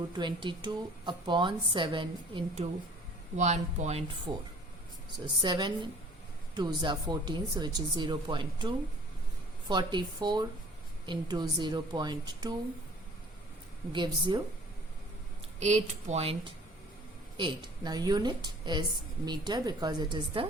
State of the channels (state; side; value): normal; both; correlation 0.50